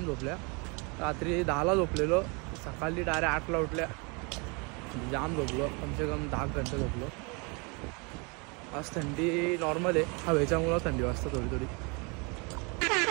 झोपल्या। रात्री 10ला झोपलेलो, सकाळी डायरेक्ट 8ला उठल्या। जाम झोपलो, कमसे कम 10 घंटे झोपलो। आज थंडी नॉर्मल आहे, हवेच्यामुळं थंडी वाजते थोडी थोडी।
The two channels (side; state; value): left; quieter; 31.3 dB